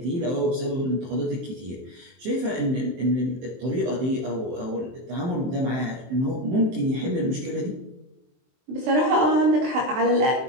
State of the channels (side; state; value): left; late; 23 ms